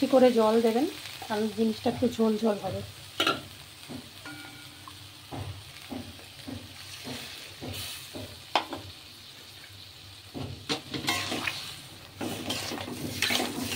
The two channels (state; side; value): identical; both; correlation 1.00